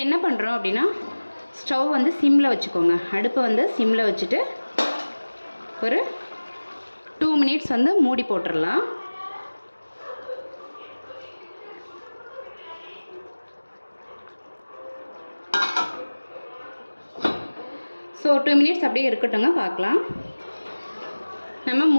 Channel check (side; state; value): both; inverted; correlation -1.00